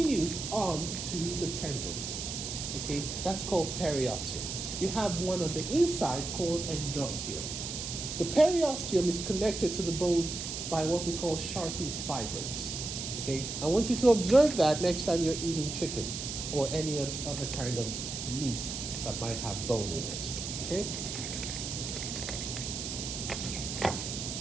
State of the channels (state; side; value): noise; right; hiss, 5 dB below the sound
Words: on to the tendon. Okay, that's called periosteum. You have one on the inside called endosteum. The periosteum is connected to the bone by what we call Sharpie's fibers. Okay, I want you to observe that next time you're eating chicken or any other kind of meat that might have bone in it. Okay.